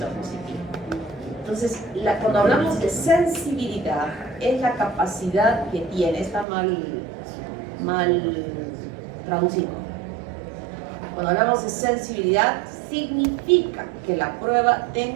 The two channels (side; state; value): left; drops out; at 6.5 s